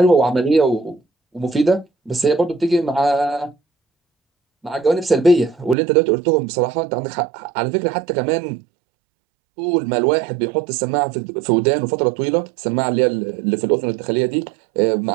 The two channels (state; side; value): drops out; left; at 5.8 s